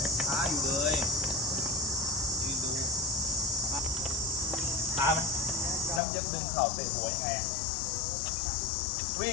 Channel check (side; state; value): right; drops out; at 6.0 s